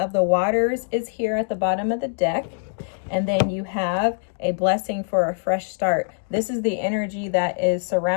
the waters is here at the bottom of the deck. And then you have a blessing for a fresh start. This is the energy that is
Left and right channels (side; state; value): right; silent; digital silence